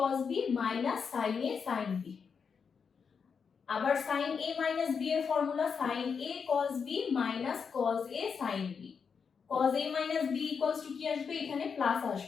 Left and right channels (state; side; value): quieter; right; 6.1 dB